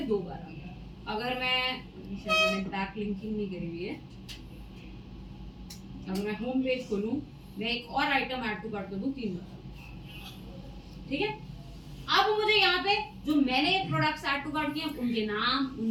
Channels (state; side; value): identical; both; correlation 1.00